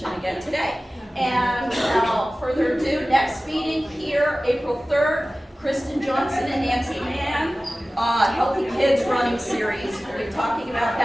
again today. And without further ado, next meeting here, April 3rd, Kristen Johnson and Nancy Mann Healthy Kids Running Series. We'll be talking about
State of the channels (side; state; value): both; normal; correlation 0.97